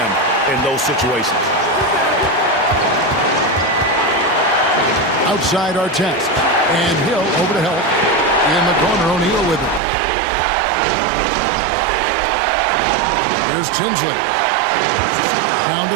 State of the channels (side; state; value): left; drops out; at 9.8 s